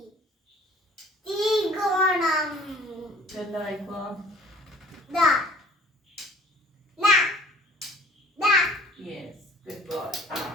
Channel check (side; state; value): both; normal; correlation 0.53